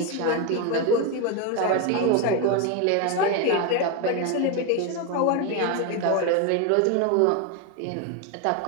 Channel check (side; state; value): both; different; correlation 0.02